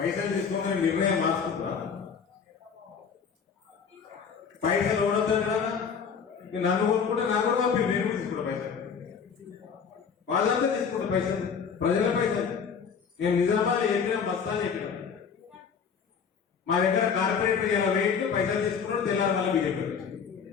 తీసుకోమని నిర్ణయం మార్చుకుంటా? పైసలు ఓడొద్దా? నన్ను కొనుక్కుంటే నాకు కూడా పంపి, నేను తీసుకుంటా పైసలు. వాళ్ళంతా తీసుకుంటా పైసలు, ప్రజల పైసలు. నేను నిజామాబాద్ చెప్పినా, బస్తాలు చెప్పినా. మా దగ్గర కార్పొరేటర్ ఇలా వెయిట్ పైసలు తీసుకున్నాడు, తెల్లారి మళ్ళీ బీజేపీ వచ్చి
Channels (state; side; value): quieter; right; 6.5 dB